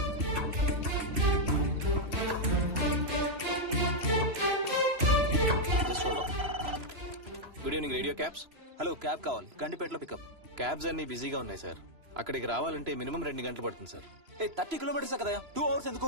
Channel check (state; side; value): late; left; 3.0 ms